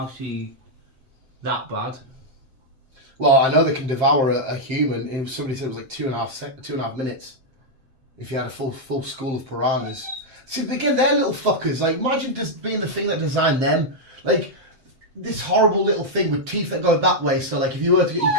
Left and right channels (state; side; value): late; left; 7.6 ms